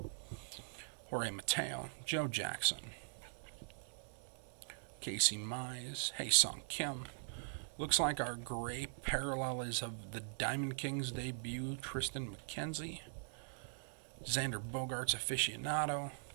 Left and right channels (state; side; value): silent; left; digital silence